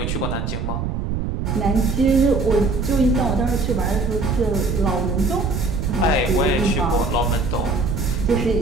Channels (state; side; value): noise; right; rumble, 3 dB below the sound